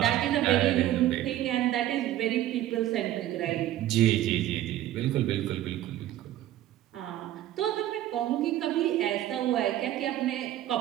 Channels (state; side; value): quieter; left; 13.4 dB